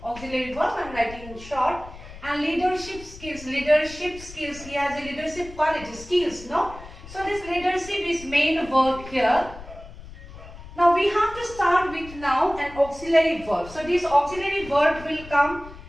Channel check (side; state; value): left; noise; rumble, 16 dB below the sound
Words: Auxiliary verb, I am writing in short. And leadership skills. He has a leadership quality, skills, no? So this leadership is main verb here. Now we have to start with now an auxiliary verb. So this auxiliary verb will come